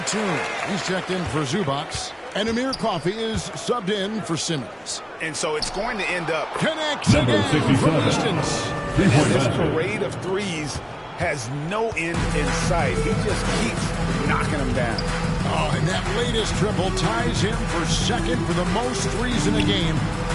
he's checked in for Zubac. And Amir Coffey is subbed in for Simmons. And so it's going to end up connects again from distance. And this parade of threes has no end in sight. He just keeps knocking them down. Oh, and that latest triple ties him for second for the most threes in a game.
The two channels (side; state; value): both; identical; correlation 1.00